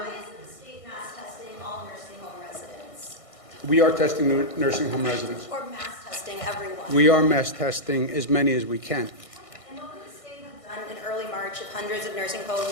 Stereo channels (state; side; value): late; right; 1.6 ms